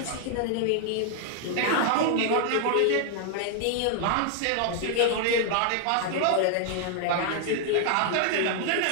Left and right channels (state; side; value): different; both; correlation 0.00